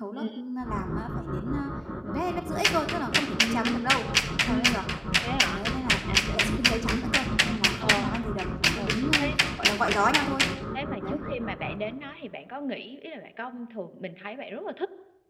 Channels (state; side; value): identical; both; correlation 1.00